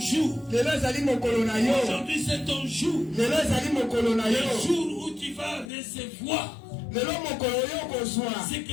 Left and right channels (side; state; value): right; drops out; at 5.7 s